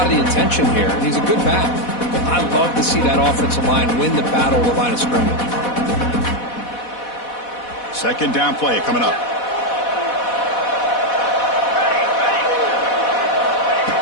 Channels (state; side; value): late; right; 4.1 ms